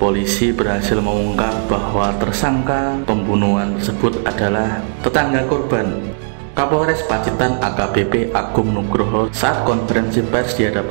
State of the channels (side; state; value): left; silent; digital silence